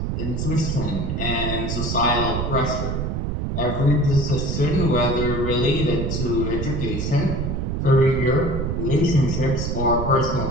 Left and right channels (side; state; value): right; noise; rumble, 1 dB below the sound